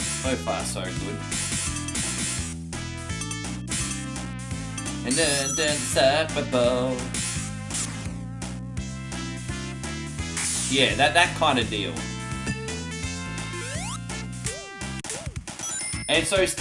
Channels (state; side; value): identical; both; correlation 1.00